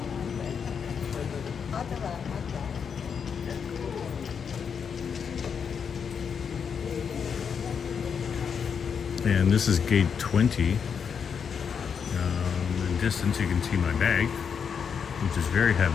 And this is gate 20. In distance, you can see my bag, which is very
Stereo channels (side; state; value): right; quieter; 6.7 dB